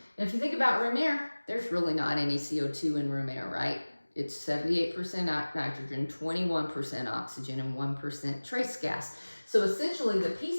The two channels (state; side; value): inverted; both; correlation -1.00